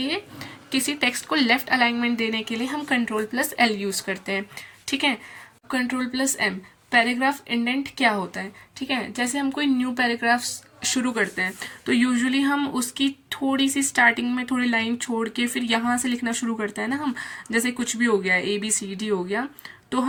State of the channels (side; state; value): both; identical; correlation 1.00